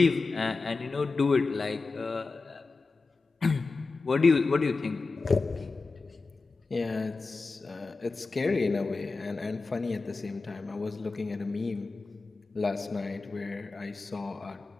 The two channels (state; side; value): quieter; right; 3.9 dB